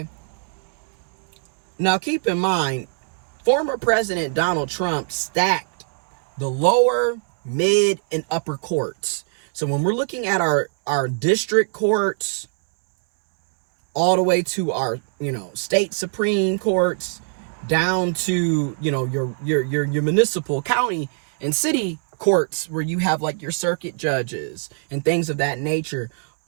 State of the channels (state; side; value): silent; left; 63 dB below the other